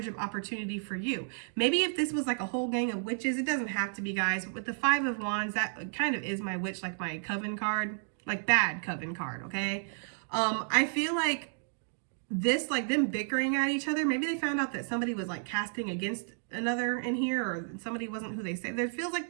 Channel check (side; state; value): left; silent; digital silence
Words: of opportunity for you. Maybe if this was like a whole gang of witches, it doesn't have to be, guys. But with the 5 of Wands, that kind of is my witch, like my coven card, like bad coven card, okay? I feel like this, like them bickering at each other, maybe they found out that somebody was like casting against another in here, or somebody wasn't who they say. There feels like